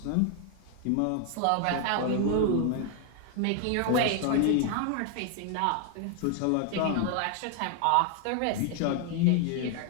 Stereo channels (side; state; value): both; different; correlation 0.00